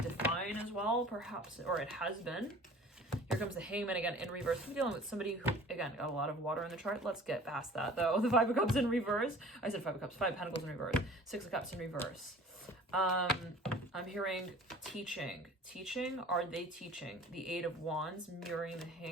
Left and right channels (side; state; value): both; normal; correlation 0.46